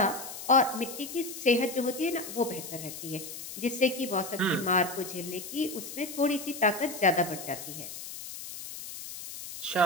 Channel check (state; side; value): noise; left; hiss, 10 dB below the sound